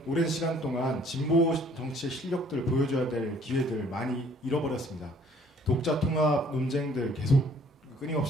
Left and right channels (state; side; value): normal; both; correlation 0.59